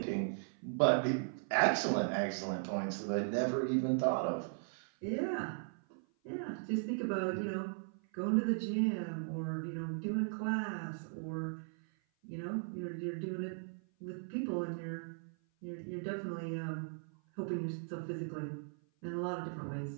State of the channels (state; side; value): silent; left; 53 dB below the other